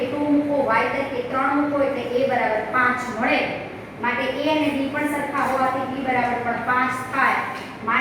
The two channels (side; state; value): both; identical; correlation 1.00